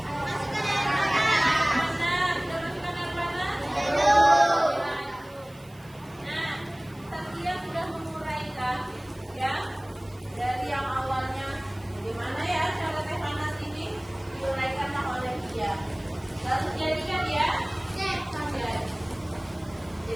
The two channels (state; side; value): noise; right; hiss, 27 dB below the sound